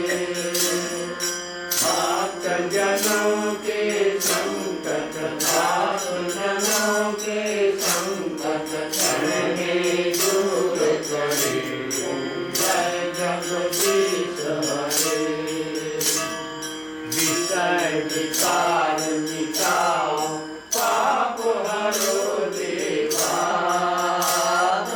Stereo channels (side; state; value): both; identical; correlation 1.00